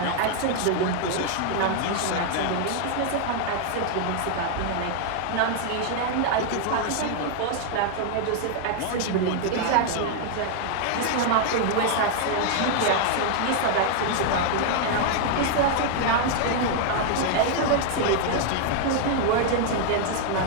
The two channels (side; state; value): both; different; correlation 0.00